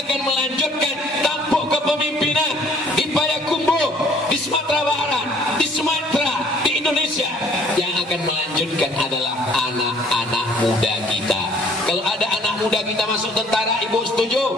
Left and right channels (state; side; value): normal; both; correlation 0.57